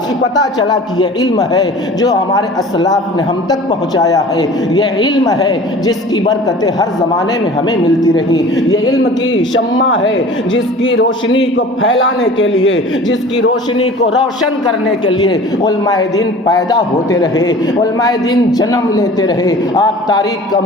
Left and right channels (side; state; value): both; normal; correlation 0.43